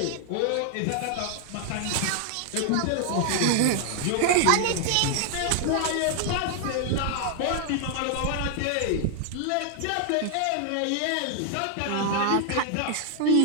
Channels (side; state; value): both; different; correlation 0.00